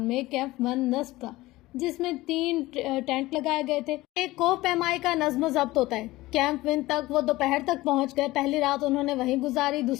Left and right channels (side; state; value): right; quieter; 18.5 dB